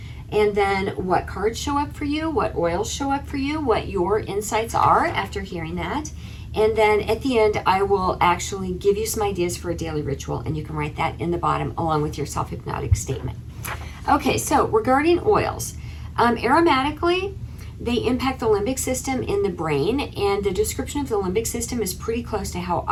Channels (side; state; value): both; identical; correlation 1.00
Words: and then what cards show up for you, what oils show up for you, what your insights are after hearing that. And then at the end, I will actually give you some ideas for a daily ritual, and you can write that in the bottom along with your self-hypnotic statement. Okay, so regarding oils, aromatically, they impact the limbic system in the brain, and the description of the limbic system is pretty close to how